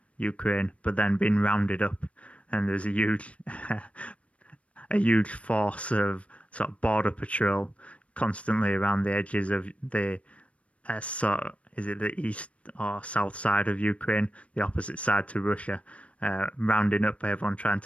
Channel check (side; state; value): right; late; 0.063 ms